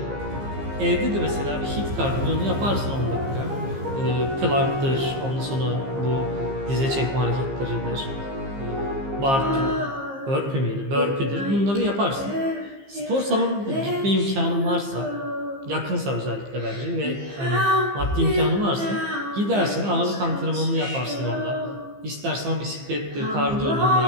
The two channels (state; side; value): late; left; 15 ms